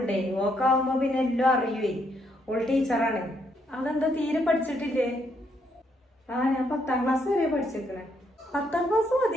ഓക്കാവുമ്പോ പിന്നെ എല്ലാം അറിയുവേ. ഓൾ ടീച്ചറാണ്. അതെന്താ തീരെ പഠിച്ചിട്ടില്ലേ? ഞാൻ 10ാം ക്ലാസ് വരെ പഠിച്ചിരിക്കണേ. 10ാം ക്ലാസ്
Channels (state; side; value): normal; both; correlation 0.74